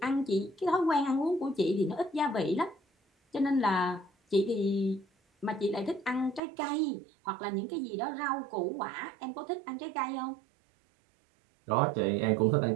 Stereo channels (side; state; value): left; drops out; at 6.4 s